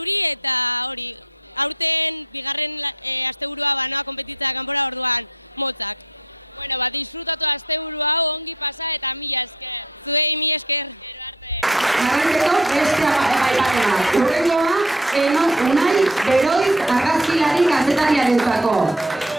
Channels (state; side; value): normal; both; correlation 0.47